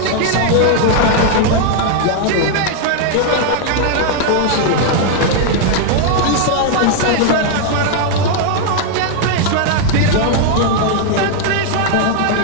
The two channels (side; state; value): both; different; correlation 0.00